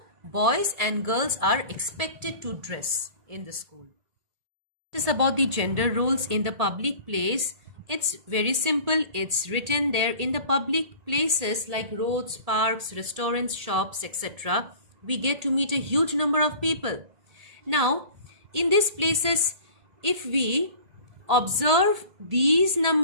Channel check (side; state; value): left; late; 1.8 ms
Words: boys and girls are expected to dress in the school. It is about the gender roles in the public place. It's very simple. It's written there. In the public places like roads, parks, restaurants, shops, etc., we get to meet a huge number of people. Now, in these places, if we observe these